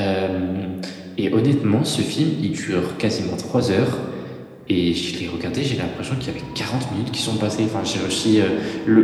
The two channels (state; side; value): identical; both; correlation 1.00